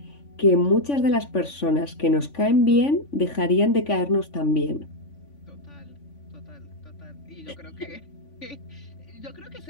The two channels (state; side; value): late; right; 3.5 ms